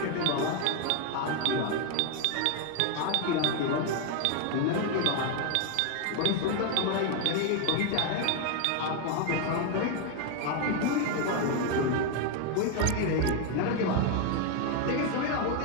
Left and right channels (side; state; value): both; different; correlation 0.01